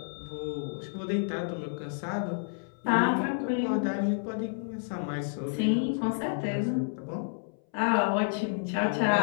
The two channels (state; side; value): silent; right; 58 dB below the other